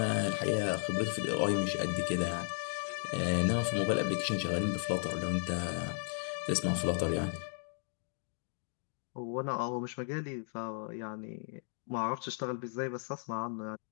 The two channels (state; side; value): silent; right; 54 dB below the other